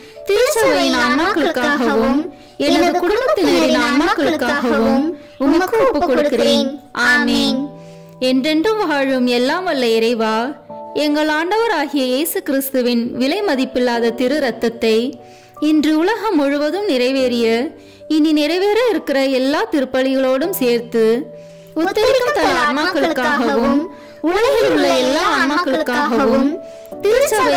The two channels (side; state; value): both; identical; correlation 1.00